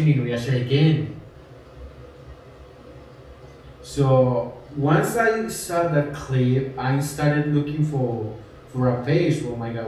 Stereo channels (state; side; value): identical; both; correlation 1.00